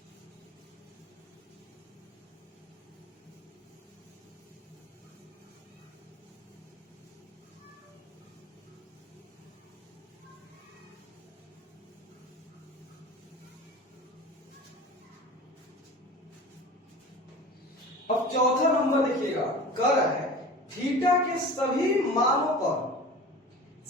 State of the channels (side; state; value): both; normal; correlation 0.37